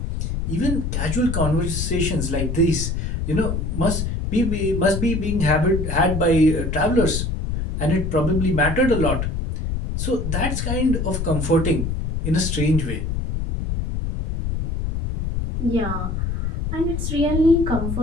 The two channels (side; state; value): left; noise; rumble, 2 dB below the sound